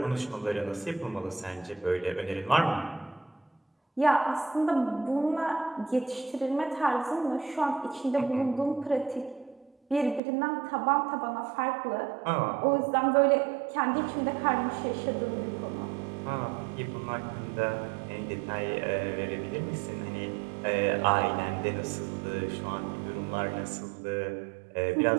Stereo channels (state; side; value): drops out; left; at 10.2 s